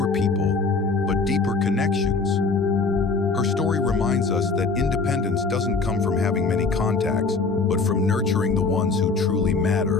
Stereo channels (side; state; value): right; quieter; 4.2 dB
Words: people, but deeper connections. Her story reminds us that independence doesn't come from having many contacts, but from nurturing the ones who truly